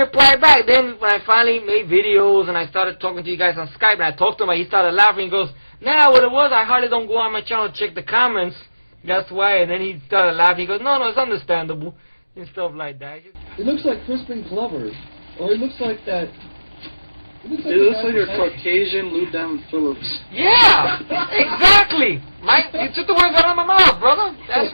back. Then when I finally made videos and I started talking to you guys on Skype and I talked to him, he started laughing. He goes, nah, what it was, I hardly don't go on my channel to check the comments. That's why. And then he started laughing. He goes, no, it's understandable. And stuff like that. It looks like Crispin Glover. Or it looks like that... It looks like a Caucasian Lou Diamond Phillips. Yeah! Exactly! Mike, you took the words out of my mouth, brother. That's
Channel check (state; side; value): inverted; both; correlation -1.00